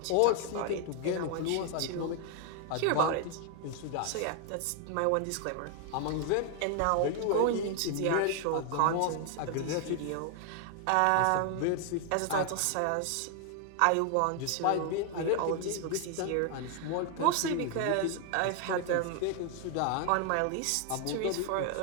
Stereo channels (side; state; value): both; different; correlation 0.00